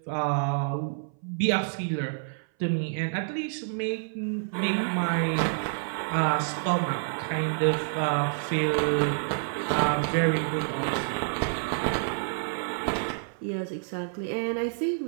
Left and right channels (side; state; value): left; silent; 57 dB below the other